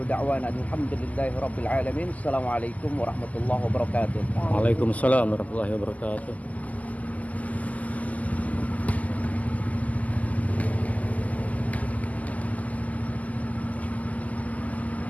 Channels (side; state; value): right; late; 0.075 ms